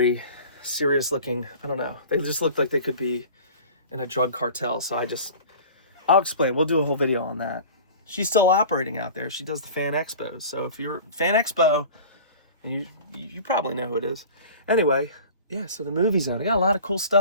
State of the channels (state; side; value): inverted; both; correlation -0.41